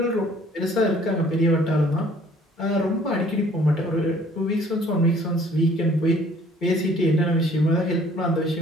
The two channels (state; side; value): normal; both; correlation 0.56